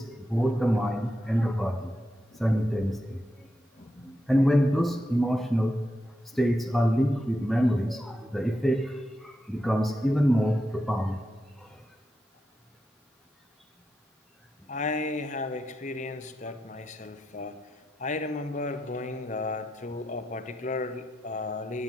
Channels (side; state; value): both; normal; correlation 0.86